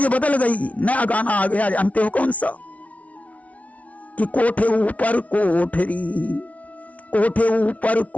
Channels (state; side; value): late; right; 0.067 ms